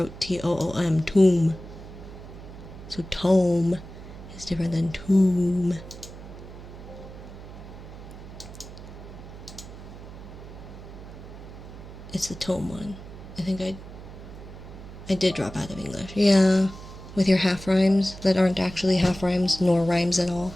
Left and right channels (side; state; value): right; noise; hum, 14 dB below the sound